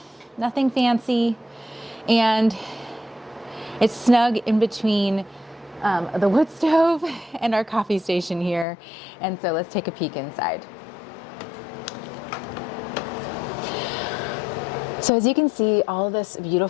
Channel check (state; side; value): drops out; right; at 8.7 s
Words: nothing fancy, and it's snug in between the wood stove and our coffee station here. And so let's take a peek inside. So as you can see, all of this